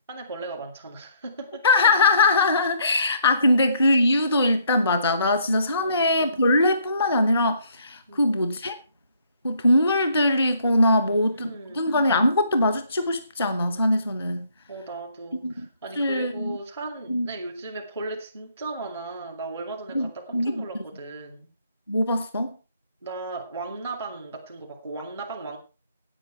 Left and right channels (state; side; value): inverted; both; correlation -0.66